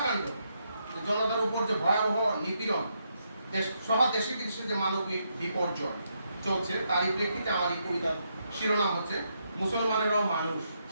জনতার উপর যে ভয়াবহ নিপীড়ন, সহ দেশে বিদেশে যে মানবিক বিপর্যয় চলছে, তারই প্রেক্ষিতে আমার এই কবিতার শিরোনাম হচ্ছে মুসলমানেরাও মানুষ।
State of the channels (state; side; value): inverted; both; correlation -0.79